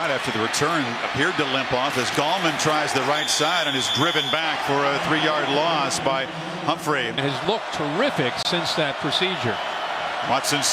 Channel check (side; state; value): both; identical; correlation 1.00